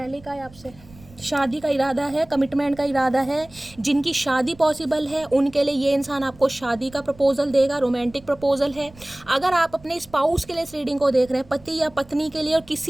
कहा है आपसे, शादी का इरादा है, कमिटमेंट का इरादा है। जिनकी शादी पॉसिबल है उनके लिए ये इंसान आपको शादी का प्रपोजल देगा, रोमांटिक प्रपोजल है। अगर आप अपने स्पाउस के लिए इस रीडिंग को देख रहे हैं, पति या पत्नी के लिए, और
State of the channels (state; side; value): noise; right; rumble, 23 dB below the sound